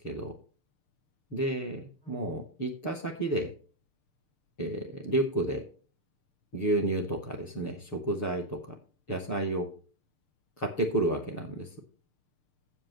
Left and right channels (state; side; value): late; right; 6.7 ms